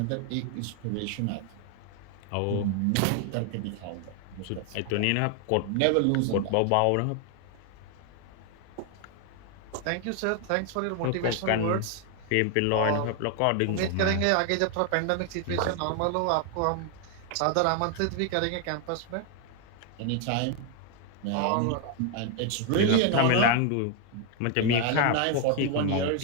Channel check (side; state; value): both; different; correlation 0.01